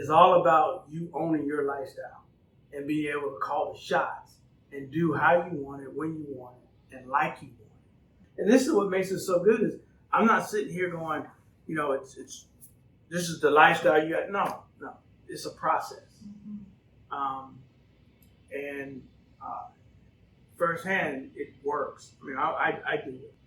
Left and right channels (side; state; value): both; identical; correlation 1.00